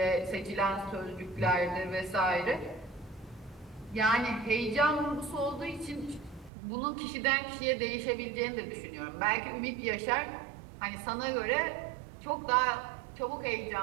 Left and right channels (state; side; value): drops out; left; at 6.5 s